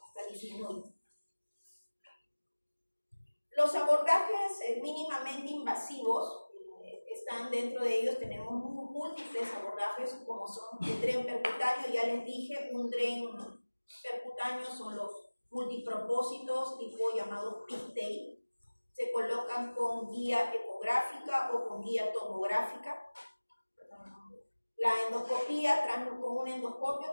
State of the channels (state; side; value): inverted; both; correlation -1.00